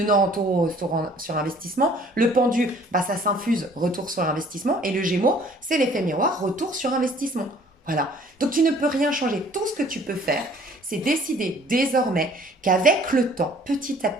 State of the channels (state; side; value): normal; both; correlation 0.55